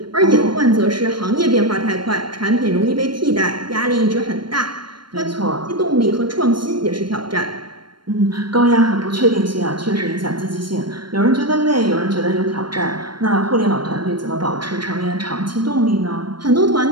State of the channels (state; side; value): late; left; 0.72 ms